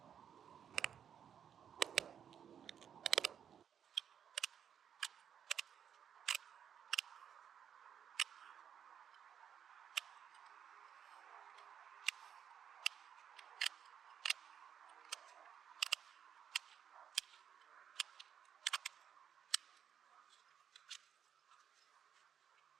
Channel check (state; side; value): quieter; left; 8.5 dB